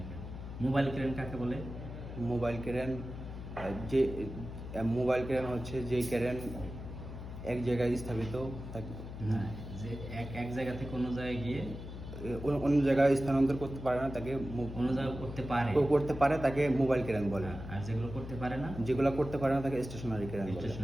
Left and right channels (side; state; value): left; noise; hum, 10 dB below the sound